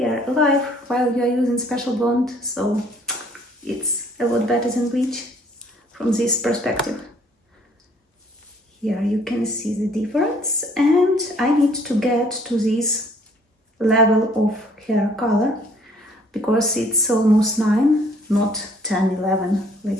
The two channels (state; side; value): normal; both; correlation 0.59